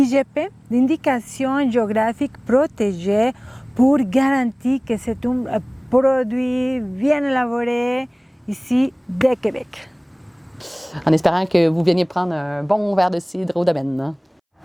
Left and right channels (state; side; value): identical; both; correlation 1.00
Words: d'indication géographique protégée, pour garantir que c'est un produit bien élaboré ici de Québec. En espérant que vous veniez prendre un bon verre de cidre au domaine.